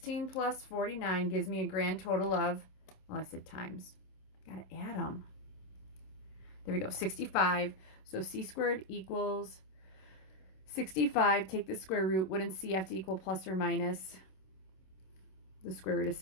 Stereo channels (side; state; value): right; late; 26 ms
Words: plus 49 gives me a grand total of, well, I said times. Got to add them. There we go, 65. So C squared equals 65. Take the square root. Wouldn't C have to equal plus or minus the square root of